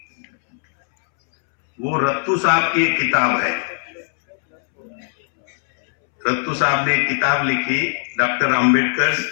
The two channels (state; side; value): silent; right; 66 dB below the other